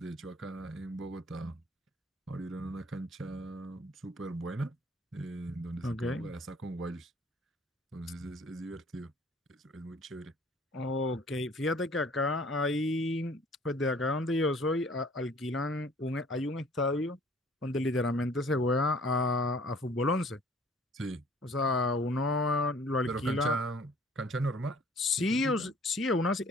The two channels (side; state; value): both; normal; correlation 0.54